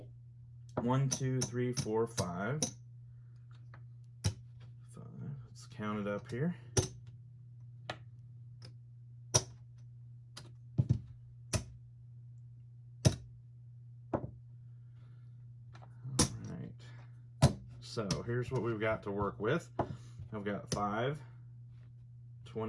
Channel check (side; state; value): both; identical; correlation 1.00